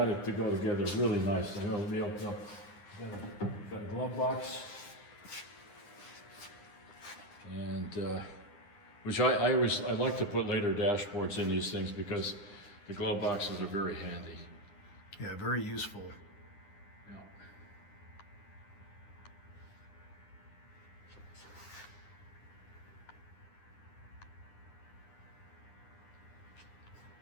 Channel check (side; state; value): right; late; 9.8 ms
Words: it to go together really nice. I know it'll be opened up. Got a glove box. And, which I like to put later dashboards in these things because the glove boxes are very handy. Yeah, very useful.